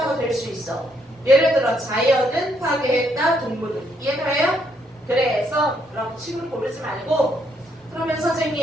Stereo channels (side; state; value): both; normal; correlation 0.73